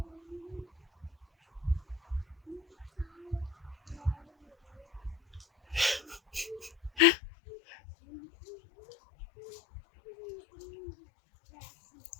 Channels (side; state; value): right; drops out; at 7.0 s